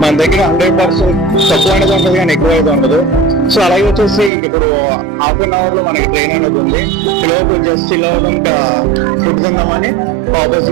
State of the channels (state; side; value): drops out; left; at 4.3 s